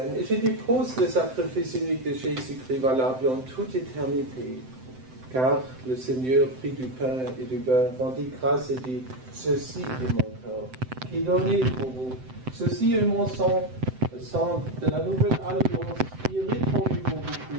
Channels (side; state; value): left; late; 7.8 ms